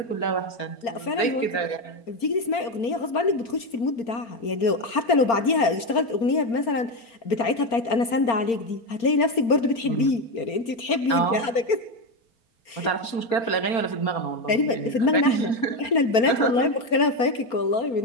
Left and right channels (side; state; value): right; late; 4.3 ms